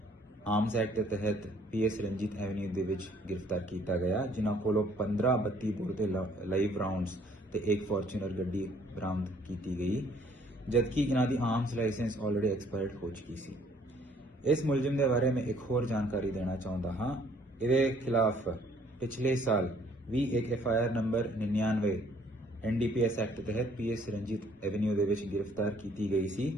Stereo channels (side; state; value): both; normal; correlation 0.61